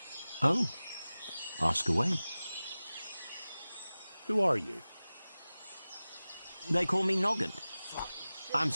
Oh, ask away. Who are you? They call me Noggin. I'm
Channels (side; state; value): both; inverted; correlation -0.97